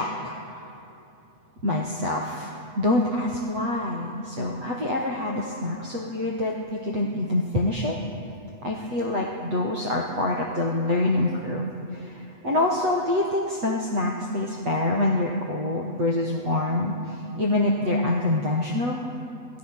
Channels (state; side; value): late; left; 8.1 ms